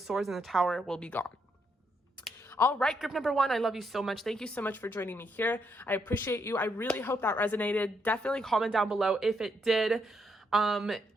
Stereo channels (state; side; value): normal; both; correlation 0.77